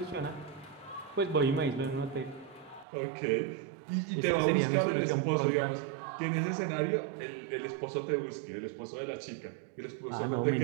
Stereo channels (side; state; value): left; drops out; at 2.9 s